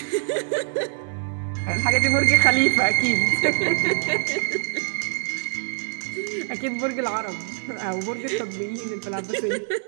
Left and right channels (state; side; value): silent; left; 63 dB below the other